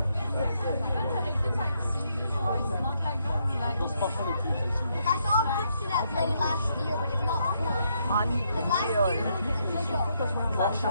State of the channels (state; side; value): inverted; both; correlation -0.76